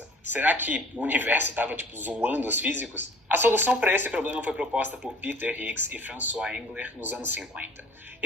Será que o universo estava zoando os físicos? A solução para esse problema foi proposta por Peter Higgs e François Engler nos anos 50.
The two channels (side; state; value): both; normal; correlation 0.50